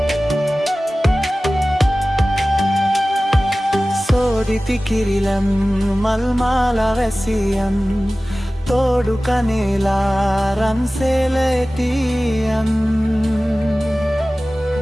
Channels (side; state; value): both; normal; correlation 0.97